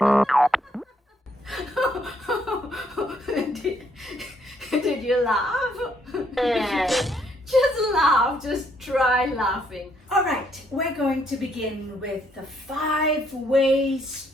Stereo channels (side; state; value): both; normal; correlation 0.70